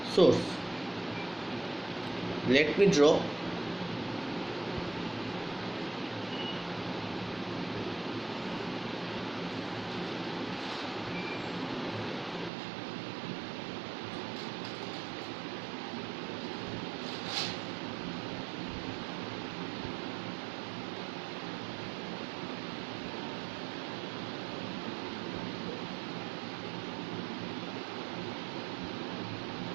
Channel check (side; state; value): left; drops out; at 12.5 s